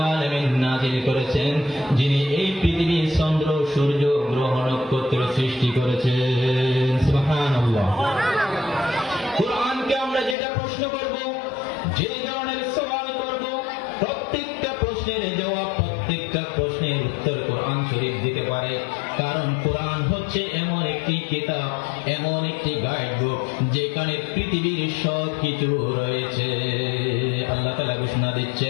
আলামিন নাযিল করেছেন যিনি এই পৃথিবী, চন্দ্র, সূর্য, গ্রহ, নক্ষত্র সৃষ্টি করেছেন। সুবহানাল্লাহ। কোরআনকে আমরা যেটা প্রশ্ন করব, যে ধরনের সওয়াল করব, প্রত্যেকটা প্রশ্নের জবাব, প্রত্যেকটা প্রশ্নের উত্তর কোরআন শরীফ দিতে পারে। কারণ কোরআন হচ্ছে এমন একটি কিতাব, এমন একটি গাইড বুক যেখানে পৃথিবীর সব কিছু রয়েছে। আল্লাহ তাআলা ঘোষণা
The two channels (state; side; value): drops out; right; at 10.4 s